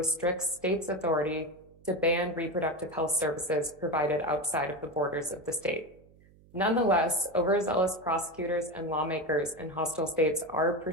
states' authority to ban reproductive health services provided outside of the borders of the state. Nonetheless, overzealous prosecutors and lawmakers in hostile states are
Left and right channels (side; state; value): right; noise; hum, 27 dB below the sound